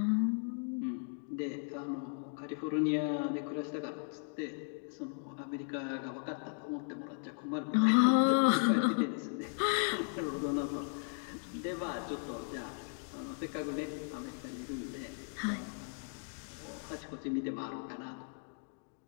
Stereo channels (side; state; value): right; silent; 53 dB below the other